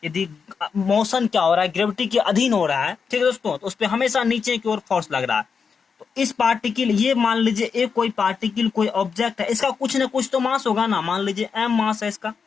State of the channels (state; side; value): quieter; right; 5.9 dB